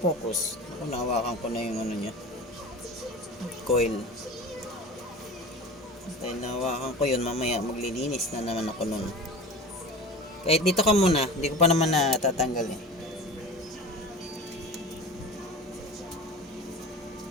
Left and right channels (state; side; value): normal; both; correlation 0.35